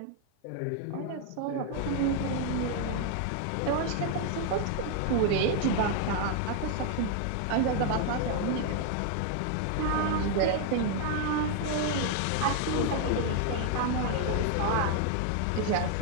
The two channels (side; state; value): both; different; correlation 0.00